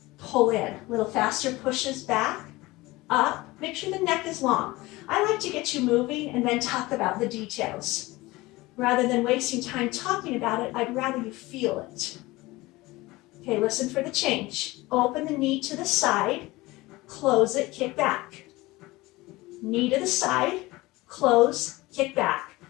pull in. A little faster, pushes back, up. Make sure the neck is long. I like to get you moving and then talk about the details. Rather than wasting time talking about it, I'd rather you feel it. Okay, listen for the change. Open the knee to the side, close it, kick back. Knee to the side, close, kick back.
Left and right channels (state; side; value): quieter; right; 20.4 dB